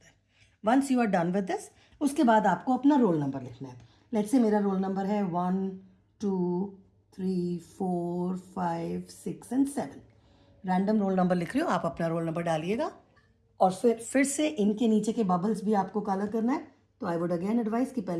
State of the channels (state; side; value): identical; both; correlation 1.00